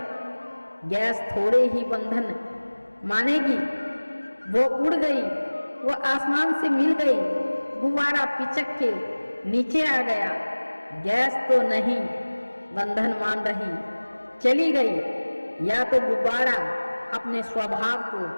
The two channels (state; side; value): inverted; both; correlation -1.00